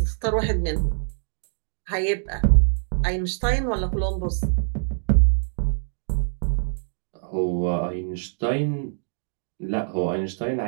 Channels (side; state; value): left; silent; digital silence